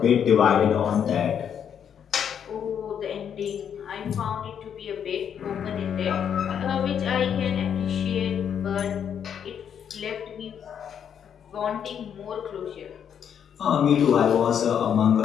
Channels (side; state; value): right; quieter; 8.3 dB